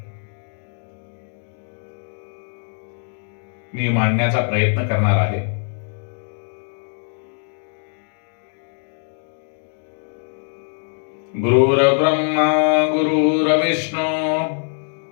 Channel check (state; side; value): silent; right; 58 dB below the other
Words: मी मांडण्याचा प्रयत्न करणार आहे। गुरुर्ब्रह्मा गुरुर्विष्णू